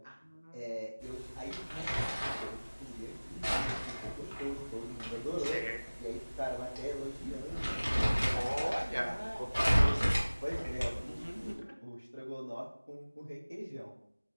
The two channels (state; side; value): inverted; both; correlation -1.00